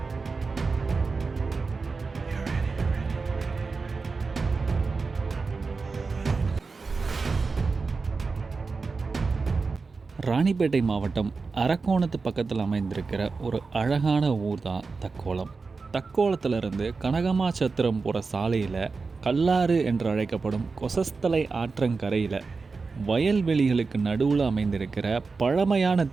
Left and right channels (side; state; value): left; quieter; 4.4 dB